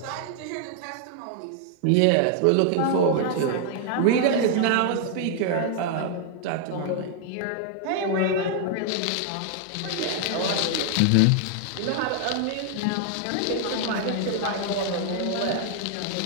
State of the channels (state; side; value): different; both; correlation 0.00